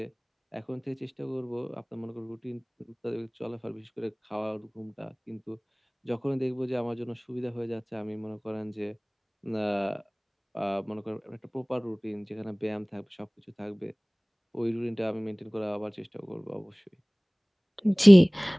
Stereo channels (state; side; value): identical; both; correlation 1.00